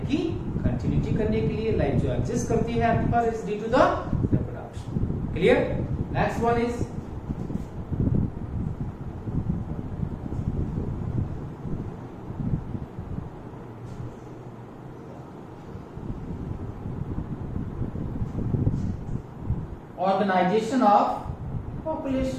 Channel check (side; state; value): both; identical; correlation 1.00